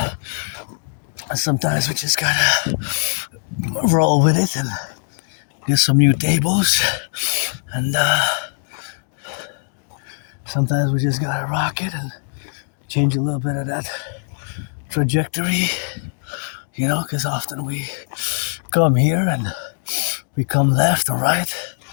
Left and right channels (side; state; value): right; silent; 63 dB below the other